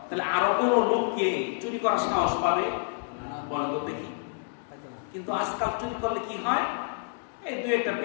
তাহলে আরো কোনো লোককে চুরি করার সাহস পাবে? বলেন তো দেখি। কিন্তু আজকাল চুরি করলে কি হয়, এই দুই একটা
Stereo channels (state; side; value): silent; right; digital silence